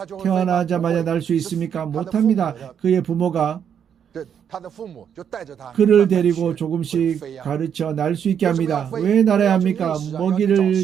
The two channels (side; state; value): left; quieter; 8.2 dB